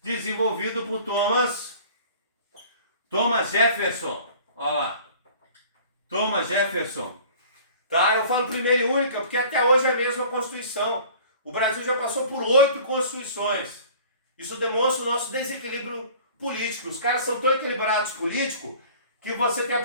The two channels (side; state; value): both; inverted; correlation -0.47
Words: desenvolvido por Thomas Jefferson. Olha lá. Thomas Jefferson. Tá? Eu falo primeira e única porque até hoje é a mesma Constituição. O Brasil já passou por 8 constituições. Isso demonstra o nosso desequilíbrio político. Os caras são tão equilibrados político que você tem a